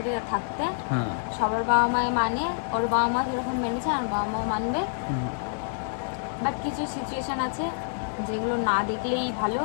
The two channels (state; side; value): silent; right; 60 dB below the other